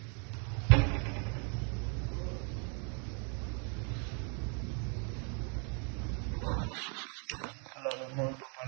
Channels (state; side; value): quieter; left; 38.6 dB